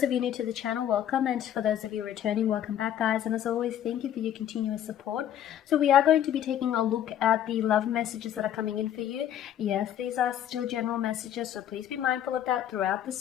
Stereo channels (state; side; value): quieter; right; 10.7 dB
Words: of you new to the channel, welcome, and for those of you returning, welcome back, guys. And as always, thank you for your continuous support. So we are going to be taking a look at the love messages that are coming in for you. Yes, these are still general messages, so please be mindful of that throughout the